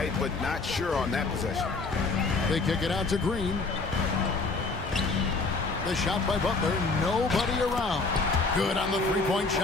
but not sure on that possession. They kick it out to Green. The shot by Butler. Nobody around. Good on the three-point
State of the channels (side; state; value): right; quieter; 3.8 dB